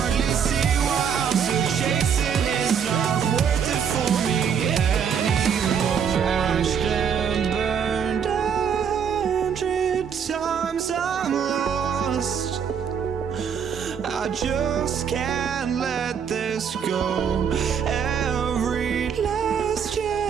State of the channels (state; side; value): quieter; left; 7.4 dB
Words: see why I'm still chasing. It's not worth it for me anymore. Crashed and burned 100 times, I'm lost. I just can't let this go. Every last